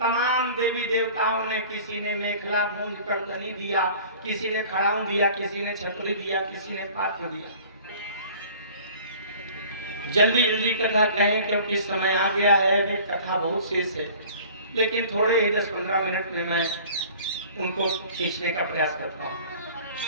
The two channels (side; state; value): both; inverted; correlation -0.46